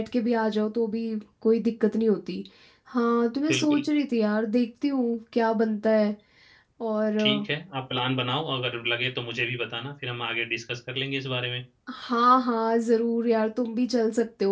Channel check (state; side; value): identical; both; correlation 1.00